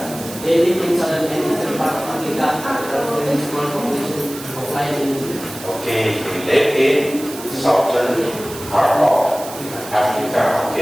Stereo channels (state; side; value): noise; right; hiss, 13 dB below the sound